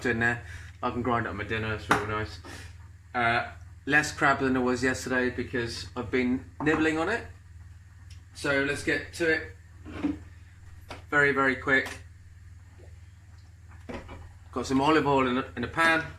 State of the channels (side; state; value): both; identical; correlation 1.00